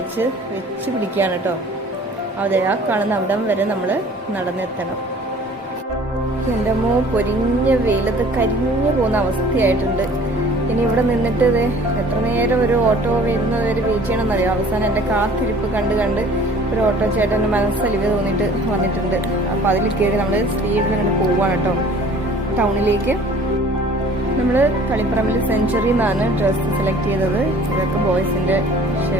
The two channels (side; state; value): both; normal; correlation 0.50